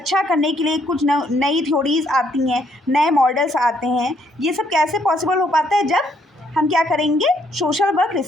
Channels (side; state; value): both; normal; correlation 0.70